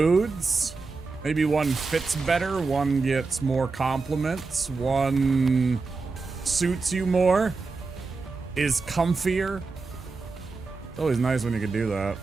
Maybe one fits better, one gets more compliments, one suits you more, is comfier. It's always nice when you can do that.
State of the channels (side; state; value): left; quieter; 4.1 dB